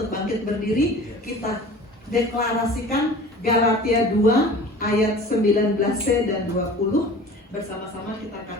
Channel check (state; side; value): normal; both; correlation 0.42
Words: bangkit berdiri. Kita deklarasikan Galatia 2 ayat 19c dan 20. Bersama-sama kita